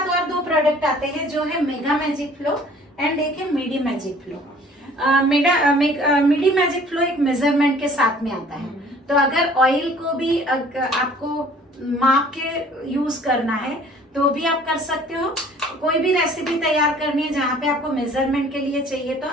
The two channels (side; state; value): both; normal; correlation 0.53